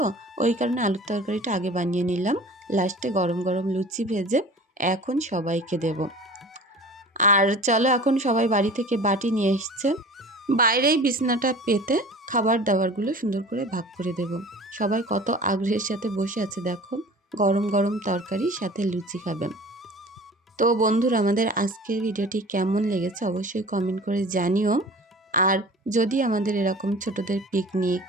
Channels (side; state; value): both; normal; correlation 0.42